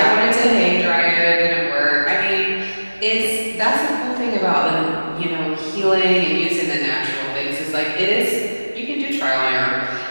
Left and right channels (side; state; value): both; inverted; correlation -1.00